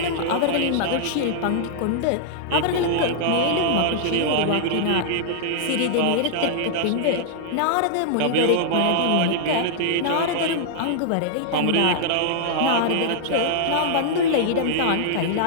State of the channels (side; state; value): both; different; correlation -0.01